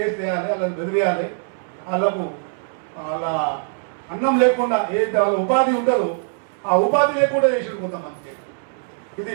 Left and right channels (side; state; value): left; silent; 64 dB below the other